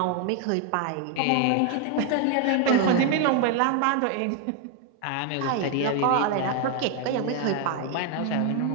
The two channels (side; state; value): both; different; correlation 0.01